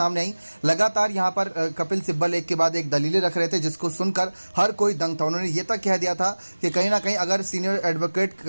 आई। लगातार यहाँ पर कपिल सिब्बल एक के बाद एक दलीलें रख रहे थे, जिसको सुनकर हर कोई दंग था। उन्होंने ये तक कह दिया था कि कहीं ना कहीं अगर सीनियर एडवोकेट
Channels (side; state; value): both; inverted; correlation -1.00